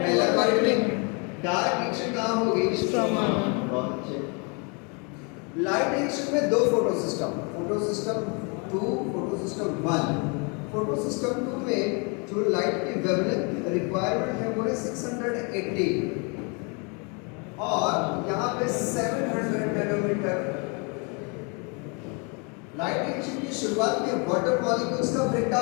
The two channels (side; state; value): right; quieter; 33.6 dB